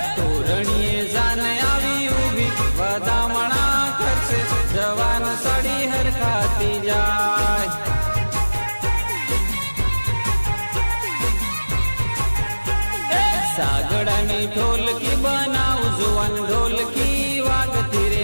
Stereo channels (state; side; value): inverted; both; correlation -1.00